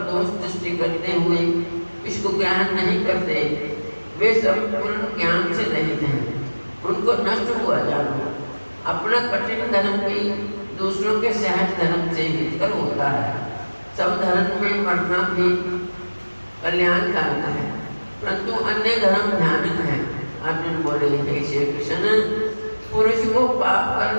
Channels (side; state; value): both; inverted; correlation -1.00